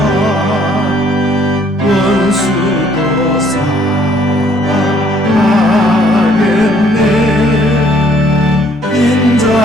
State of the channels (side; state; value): both; normal; correlation 0.63